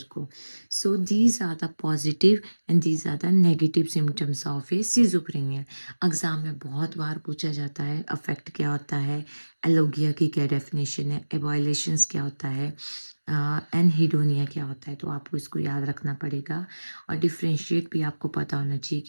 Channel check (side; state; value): both; inverted; correlation -1.00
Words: को। So these are the positive and these are the negative symptoms of a schizophrenia. Exam में बहुत बार पूछा जाता है अफेक्ट क्या होता है, एलोगिया की क्या डेफिनेशन है, एबॉयलेशंस क्या होता है, एनहिडोनिया क्या होता है। तो आपको इसको याद रखना पड़ेगा और डिफ्रेंशिएट भी आपको पता होना चाहिए